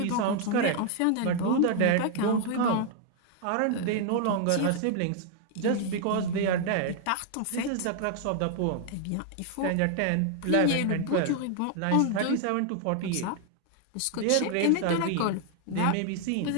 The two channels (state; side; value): different; both; correlation 0.00